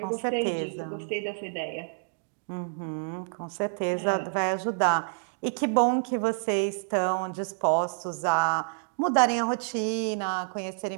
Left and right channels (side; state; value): left; silent; digital silence